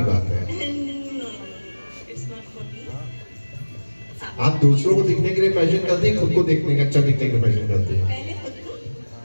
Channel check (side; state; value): both; inverted; correlation -1.00